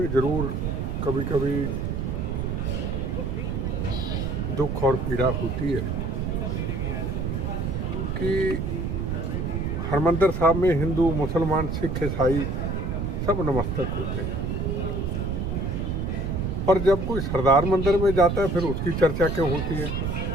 जरूर कभी कभी दुख और पीड़ा होती है कि हरमंदिर साहब में हिंदू, मुसलमान, सिख, ईसाई सब नमस्तक होते हैं, पर जब कोई सरदार मंदिर में जाता है फिर उसकी चर्चा क्यों होती है?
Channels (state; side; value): noise; right; rumble, 1 dB below the sound